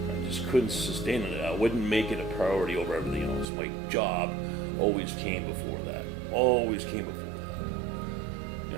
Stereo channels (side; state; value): left; drops out; at 3.5 s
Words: I just couldn't sustain it. I wouldn't make it a priority over everything else. My job always came before that. Always came before that. You